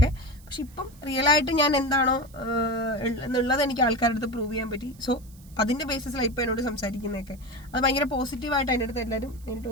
പക്ഷെ ഇപ്പം റിയലായിട്ട് ഞാൻ എന്താണോ എന്നുള്ളത് എനിക്ക് ആൾക്കാരുടെ അടുത്ത് പ്രൂവ് ചെയ്യാൻ പറ്റി. സോ അതിന്റെ ബേസിസിലാണ് ഇപ്പൊ എന്നോട് സംസാരിക്കുന്നതൊക്കെ. അത് ഭയങ്കര പോസിറ്റീവായിട്ട് അതിൻ്റെ അടുത്ത് എല്ലാവരും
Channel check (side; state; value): right; noise; hiss, 26 dB below the sound